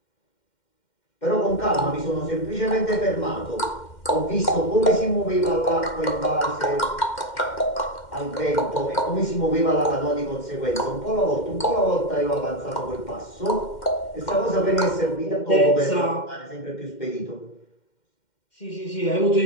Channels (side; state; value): right; late; 2.1 ms